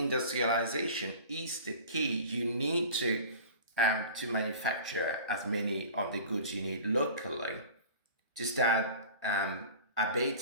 is the key. You need to manufacture as many of the goods you need locally to start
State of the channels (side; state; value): both; inverted; correlation -0.40